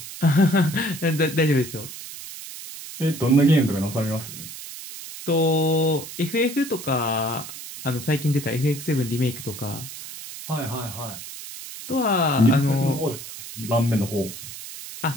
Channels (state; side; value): noise; right; hiss, 12 dB below the sound